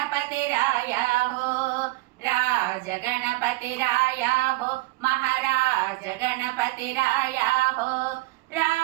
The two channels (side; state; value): left; quieter; 21.7 dB